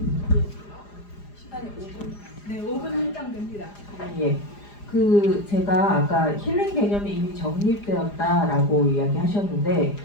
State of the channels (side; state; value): right; late; 4.9 ms